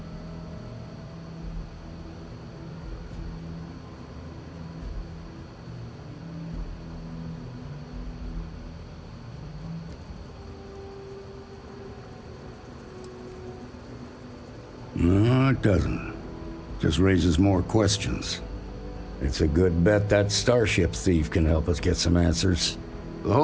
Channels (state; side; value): identical; both; correlation 1.00